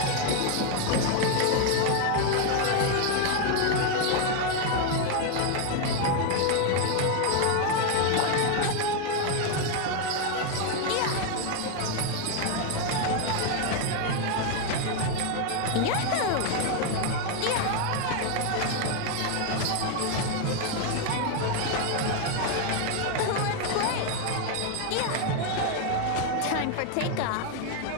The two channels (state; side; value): different; both; correlation 0.01